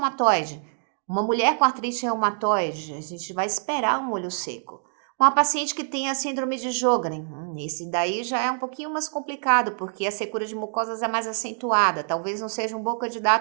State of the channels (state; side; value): silent; left; digital silence